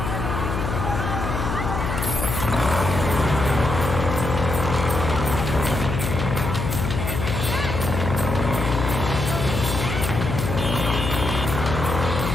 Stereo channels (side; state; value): left; noise; hum, 3 dB below the sound